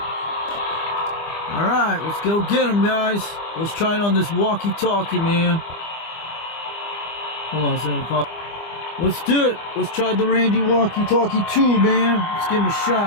Alright, let's go get them, guys. Let's try it on this walkie-talkie, man. Hold on a second. Let's do it. Let's try the Randy walkie-talkie 2, man. Let's give him a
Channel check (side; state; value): right; late; 25 ms